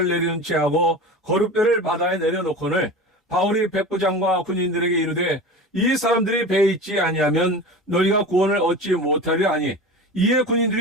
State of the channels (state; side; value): normal; both; correlation 0.32